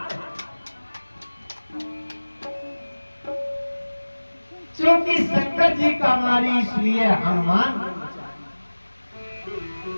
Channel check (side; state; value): both; inverted; correlation -1.00